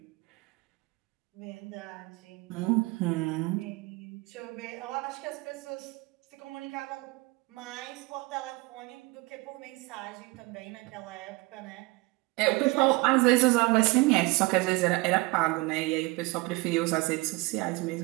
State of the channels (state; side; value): quieter; left; 24.3 dB